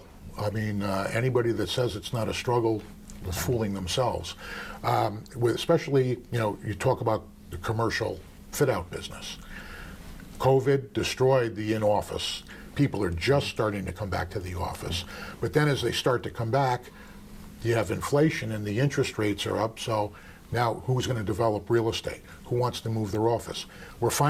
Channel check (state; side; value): identical; both; correlation 1.00